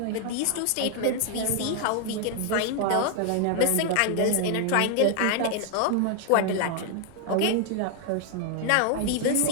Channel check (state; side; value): different; both; correlation 0.00